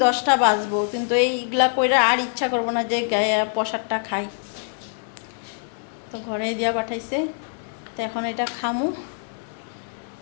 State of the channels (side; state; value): right; silent; 58 dB below the other